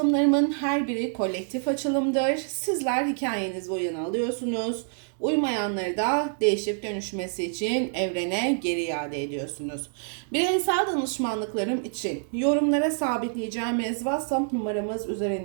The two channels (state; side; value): silent; left; digital silence